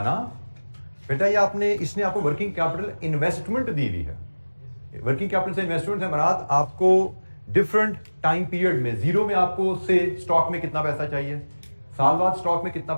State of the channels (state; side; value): inverted; both; correlation -1.00